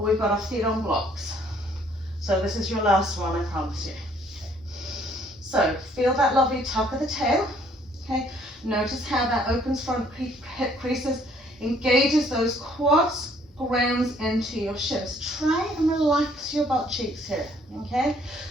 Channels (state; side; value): normal; both; correlation 0.62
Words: we've got our feet on blocks. So this is your last one, I promise you. Okay. So feel that lovely tuck of the tail, okay? Notice how that opens front hip creases, engages those quads, grounds into your shins. Try and relax your butt cheeks here, okay?